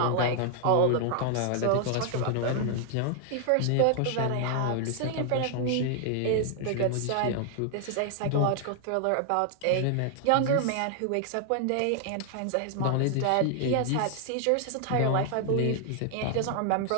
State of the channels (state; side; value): different; both; correlation 0.00